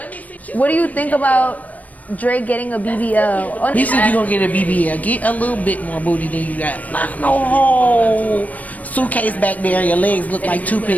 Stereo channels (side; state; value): right; late; 0.076 ms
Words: What do you think about Drake getting a BBL? Oh, He said you gonna get a BBL. Get a little bit more booty than you got. Not no whole suitcase back there. Your legs look like